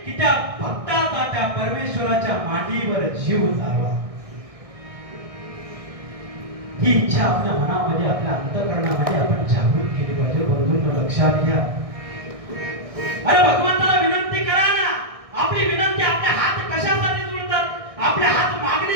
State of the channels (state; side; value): late; left; 1.6 ms